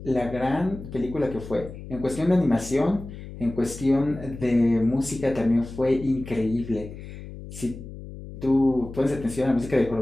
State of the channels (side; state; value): left; noise; hum, 13 dB below the sound